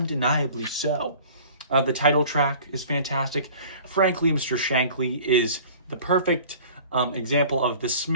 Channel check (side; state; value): both; inverted; correlation -0.46